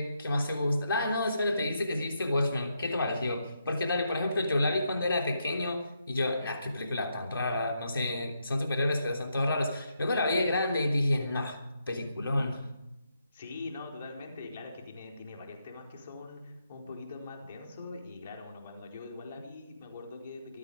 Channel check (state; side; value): inverted; both; correlation -0.80